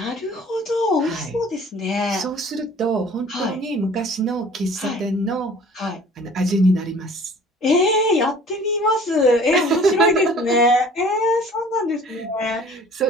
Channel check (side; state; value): both; normal; correlation 0.49